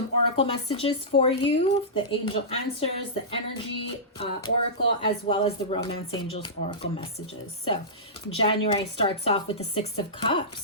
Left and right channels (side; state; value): both; normal; correlation -0.17